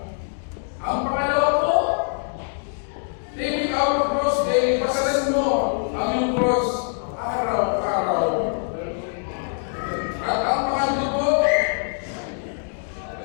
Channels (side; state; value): right; silent; digital silence